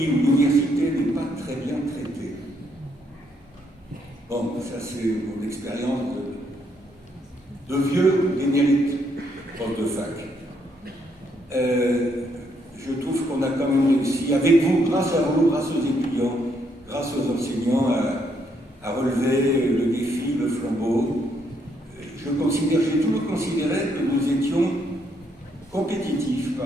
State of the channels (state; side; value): normal; both; correlation 0.73